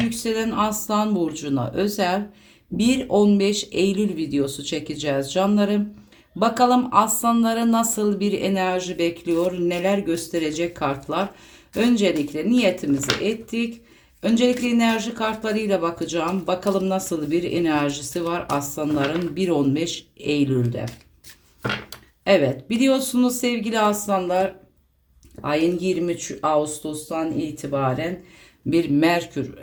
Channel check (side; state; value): both; identical; correlation 1.00